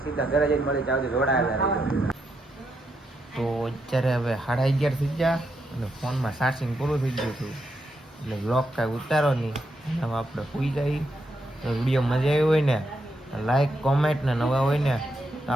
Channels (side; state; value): both; normal; correlation 0.81